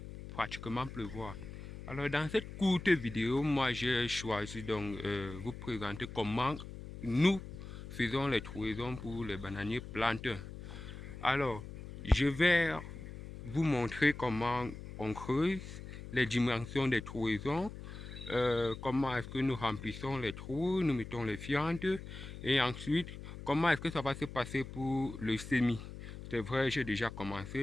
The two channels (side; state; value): left; noise; hum, 11 dB below the sound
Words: pratiquement pleuvoir. Alors, dans cette courte vidéo, moi, j'ai choisi donc vous présenter comment nous faisons les trouaisons pour les bananiers planteurs. Alors, je vais vous montrer comment on creuse, les dimensions des trouaisons, comment est-ce que nous remplissons les trous, nous mettons les fientes et ensuite comment est-ce que ça va se passer pour le semis. C'est vrai, j'ai déjà